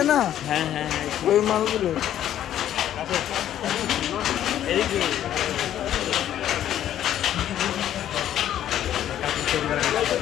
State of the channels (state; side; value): quieter; right; 11.4 dB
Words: না, হ্যাঁ হ্যাঁ হ্যাঁ, ওই মালগুলো।